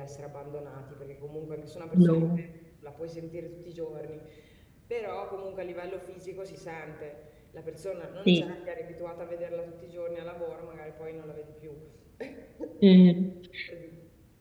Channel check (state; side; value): identical; both; correlation 1.00